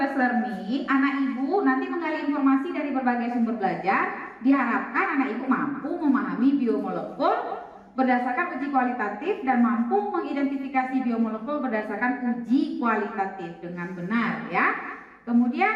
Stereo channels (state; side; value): identical; both; correlation 1.00